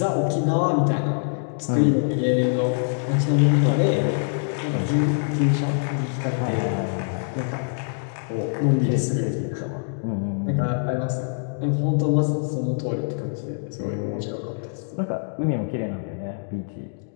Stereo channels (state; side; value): silent; right; digital silence